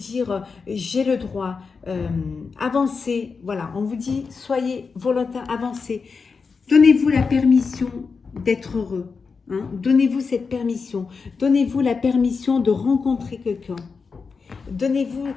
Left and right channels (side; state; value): right; quieter; 5.0 dB